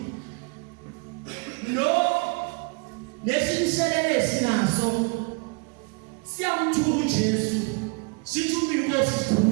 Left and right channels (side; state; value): left; quieter; 33.1 dB